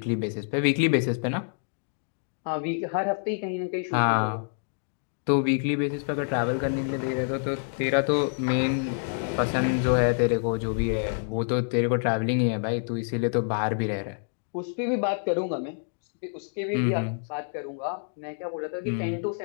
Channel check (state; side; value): silent; right; digital silence